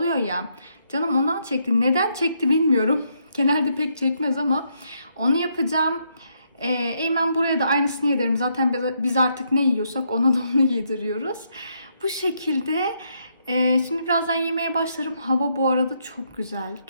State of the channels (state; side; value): inverted; both; correlation -0.76